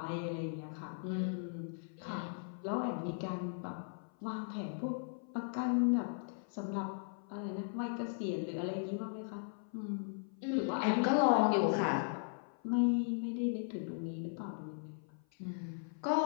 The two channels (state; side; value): silent; right; 53 dB below the other